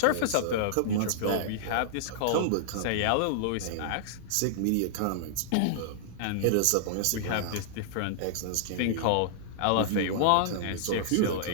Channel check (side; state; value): both; different; correlation -0.01